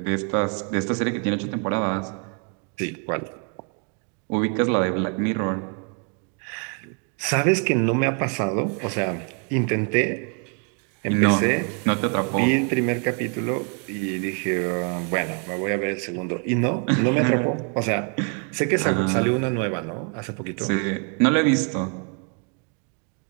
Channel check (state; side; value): quieter; left; 38.9 dB